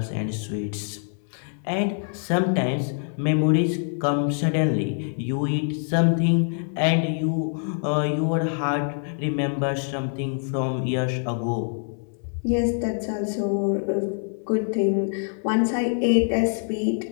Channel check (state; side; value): silent; right; 61 dB below the other